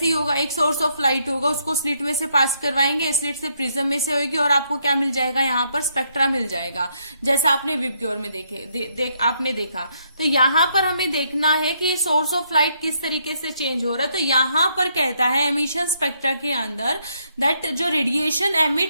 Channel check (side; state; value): both; inverted; correlation -0.73